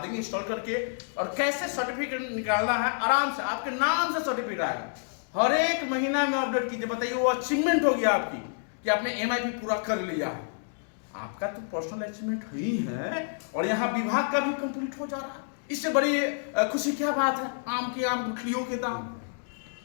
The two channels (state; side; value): silent; right; digital silence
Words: इंस्टॉल करके और कैसे सर्टिफिकेट निकालना है। आराम से आपके नाम से सर्टिफिकेट आएगा, हर एक महीना में अपडेट कीजिए। बताइए वो अचीवमेंट हो गया आपकी कि आपने MIP पूरा कर लिया है। आपका तो पर्सनल अचीवमेंट ही है और यहाँ विभाग का भी कंप्लीट हो जा रहा है। इससे बड़ी खुशी क्या बात है। आम के आम गुठलियों के दाम।